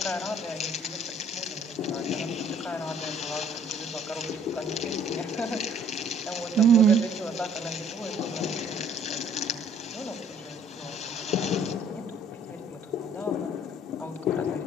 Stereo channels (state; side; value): normal; both; correlation 0.59